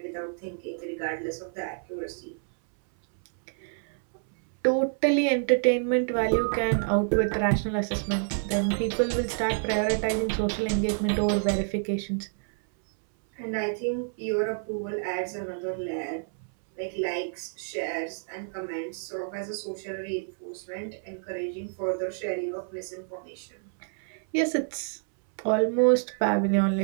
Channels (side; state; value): left; silent; 59 dB below the other